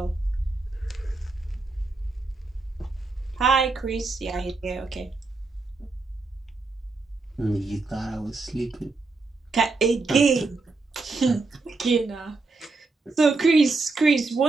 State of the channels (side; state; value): left; quieter; 3.7 dB